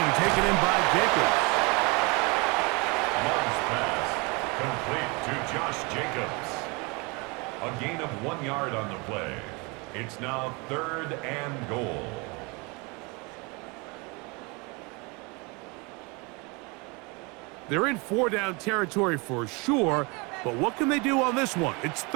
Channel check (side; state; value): left; quieter; 28.6 dB